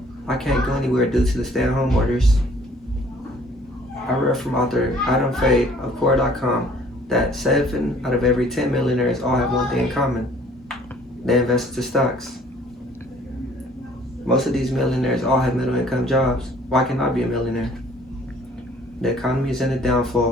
I can't go anywhere due to the stay-at-home orders. I read from author Adam Fay of Core.com that 7 out of every 10 millionaires all have one thing in common. They invest into stocks. Most of these millionaires all have middle income jobs. Why can't I be a millionaire? The economy is in a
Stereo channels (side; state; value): both; normal; correlation 0.56